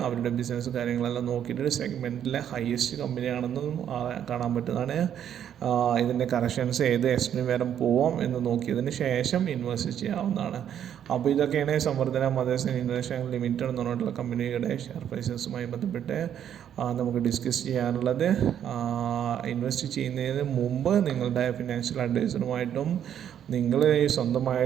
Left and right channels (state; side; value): quieter; left; 9.6 dB